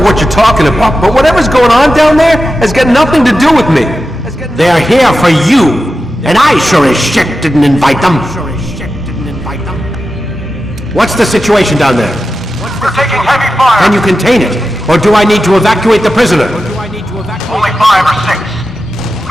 you're talking about, but whatever's going on down there has got nothing to do with me. They're here for you, and I sure as shit didn't invite them. What's the situation down there? We're taking heavy fire. Can you contain it? Or do I need to evacuate the prisoner? Only 5 or 6.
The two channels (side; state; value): both; normal; correlation 0.92